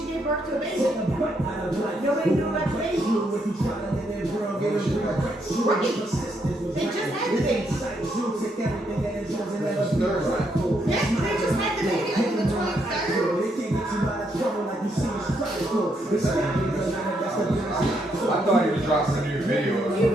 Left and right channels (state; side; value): normal; both; correlation 0.76